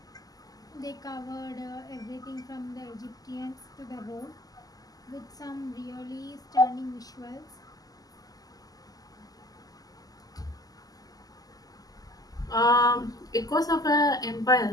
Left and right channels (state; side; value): late; right; 0.18 ms